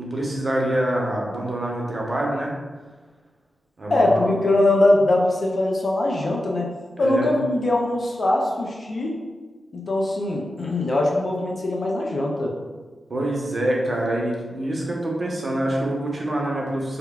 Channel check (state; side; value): normal; both; correlation 0.90